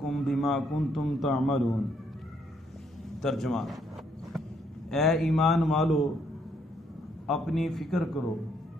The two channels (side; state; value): both; normal; correlation 0.71